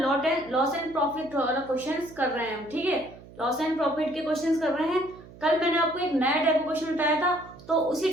एंड प्रॉफिट वाला क्वेश्चंस कर रहे हैं हम। ठीक है, लॉस एंड प्रॉफिट के क्वेश्चंस कर रहे हैं। कल मैंने आपको एक नया टाइप का क्वेश्चन बताया था, तो उसी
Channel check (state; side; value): noise; right; hum, 20 dB below the sound